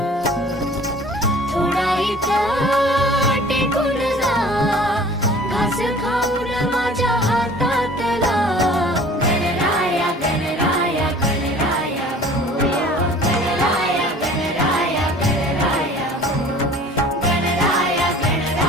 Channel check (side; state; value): both; normal; correlation 0.47